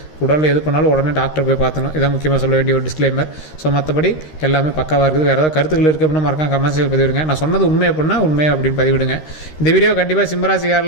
உடலில் எது பண்ணாலும் உடனே டாக்டர் போய் பார்த்துணும், இதான் முக்கியமாக சொல்ல வேண்டிய ஒரு டிஸ்க்ளைமர். ஸோ மற்றபடி எல்லாமே பக்காவாக இருக்குது. வேறு ஏதாவது கருத்துக்கள் இருக்குது அப்படின்னா மறக்காம கமெண்ட்ஸில் பதிவிடுங்க. நான் சொன்னது உண்மை அப்படின்னா உண்மை அப்படின்னு பதிவிடுங்க. இந்த வீடியோ கண்டிப்பாக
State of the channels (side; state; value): right; late; 13 ms